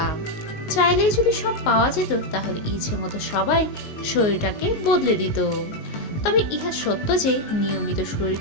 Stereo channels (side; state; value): right; late; 19 ms